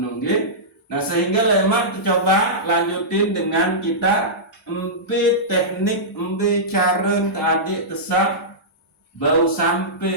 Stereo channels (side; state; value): both; normal; correlation -0.15